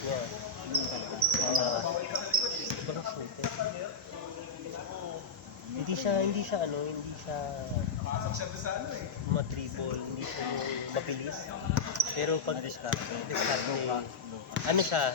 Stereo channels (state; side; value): quieter; right; 4.5 dB